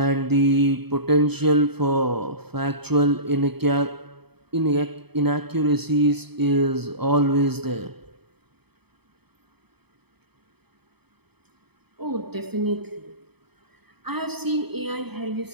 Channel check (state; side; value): late; left; 0.98 ms